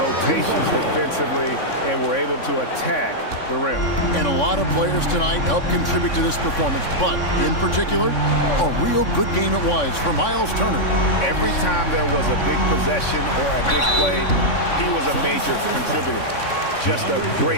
defensively and were able to attack the rim. And a lot of players tonight helped contribute to this performance, but in particular, a real good game it was for Miles Turner. Every time there was a big possession or a big play, he was a major contributor. just a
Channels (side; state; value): right; late; 3.6 ms